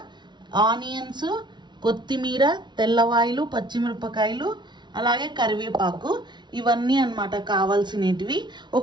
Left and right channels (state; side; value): late; left; 0.21 ms